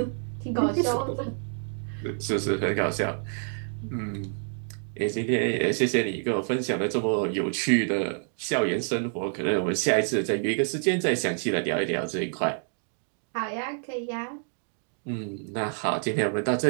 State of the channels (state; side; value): silent; left; 60 dB below the other